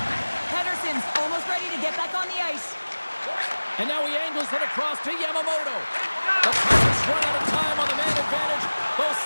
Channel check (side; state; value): both; inverted; correlation -1.00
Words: Pederson's almost ready to get back on the ice. And now he angles it across to Yamamoto. The Tigers run out of time on the man advantage. Both